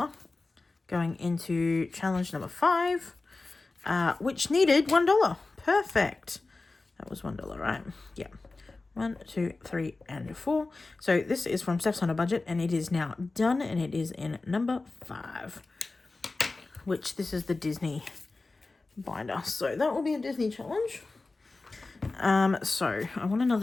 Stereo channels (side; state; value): right; quieter; 3.5 dB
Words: going into challenge number 5, which needed $1. Perfect. That was $1, right? Yeah. 1, 2, 3, and 4. So this is from Steph's on a Budget, and it is now done, and it is in number 5, which this is the Disney binder. So that will be a Disney challenge. So I want